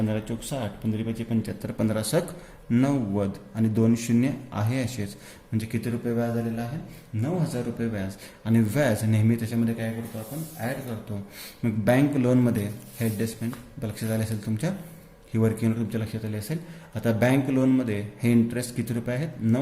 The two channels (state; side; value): identical; both; correlation 1.00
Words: 4 60, 15 5 75, 15 6 90 आणि 2 शून्य आहे असेच. म्हणजे किती रुपये व्याज आलेलं आहे? 9,000 रुपये व्याज. आणि व्याज नेहमी त्याच्यामध्ये काय करतो आपण? ॲड करतो. मग बँक लोनमध्ये हे ॲडजस्टमेंट लक्षात आले असेल तुमच्या, ही वर्किंग तुमच्या लक्षात आली असेल. आता बँक लोनमध्ये हे इंटरेस्ट किती रुपये आहेत?